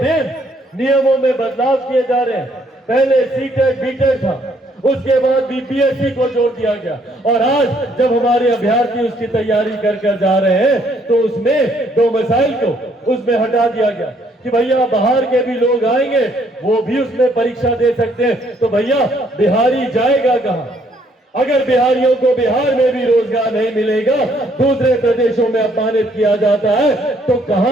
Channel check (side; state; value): both; normal; correlation 0.67